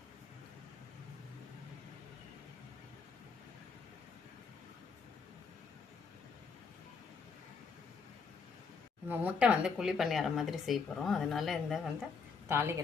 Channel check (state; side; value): quieter; right; 5.3 dB